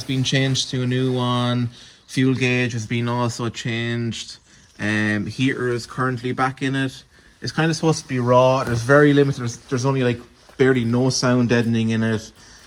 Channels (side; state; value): both; identical; correlation 1.00